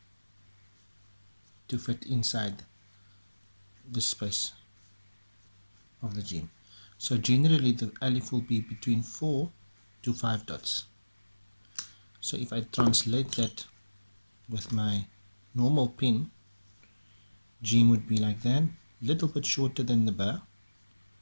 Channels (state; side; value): inverted; both; correlation -1.00